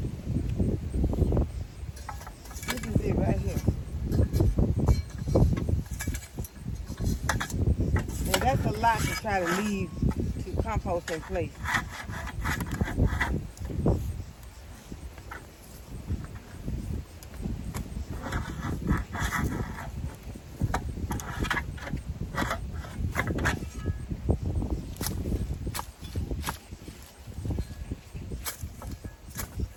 This is it right here. And that's a lot to try to leave to compost in place.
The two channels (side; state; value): both; identical; correlation 1.00